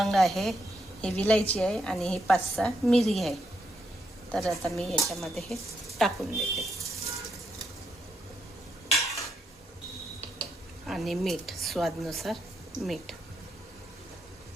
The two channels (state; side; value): normal; both; correlation 0.79